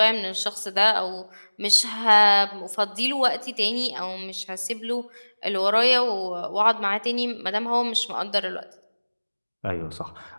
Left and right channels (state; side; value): inverted; both; correlation -1.00